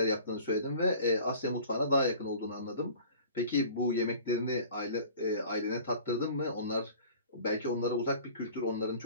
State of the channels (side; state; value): both; inverted; correlation -0.45